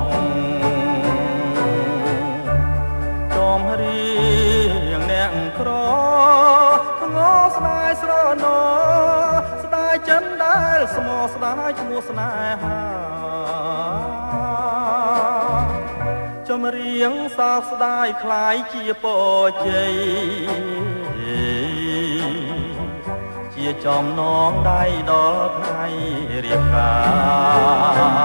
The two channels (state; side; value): inverted; both; correlation -1.00